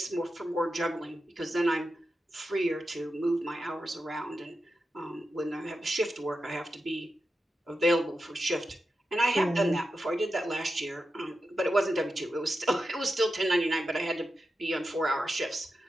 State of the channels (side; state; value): both; normal; correlation 0.90